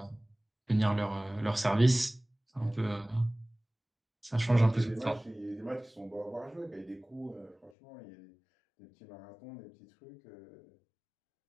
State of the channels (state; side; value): drops out; right; at 7.7 s